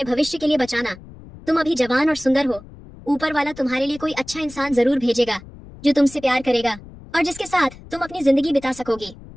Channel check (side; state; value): left; noise; rumble, 19 dB below the sound